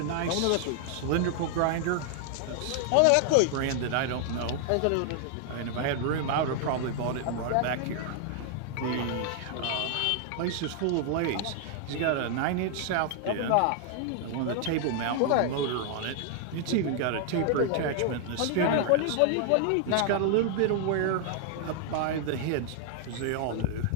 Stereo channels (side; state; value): both; different; correlation 0.00